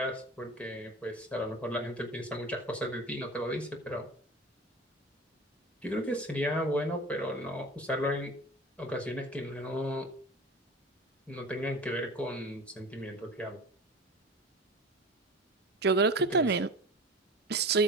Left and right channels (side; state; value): both; normal; correlation 0.35